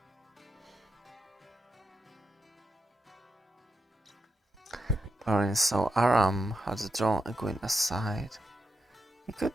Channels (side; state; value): both; normal; correlation 0.86